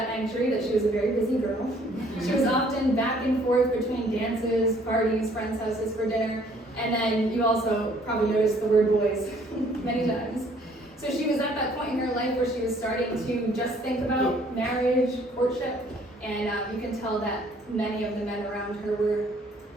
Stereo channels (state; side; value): normal; both; correlation 0.60